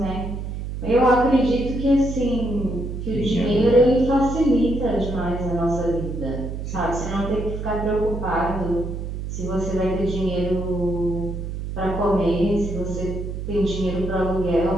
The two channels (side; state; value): right; noise; hum, 6 dB below the sound